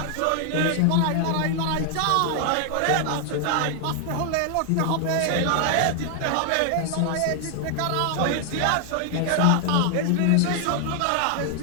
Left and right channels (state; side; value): different; both; correlation 0.00